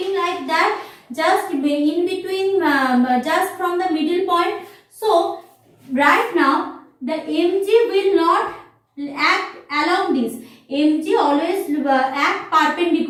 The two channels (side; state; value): both; identical; correlation 1.00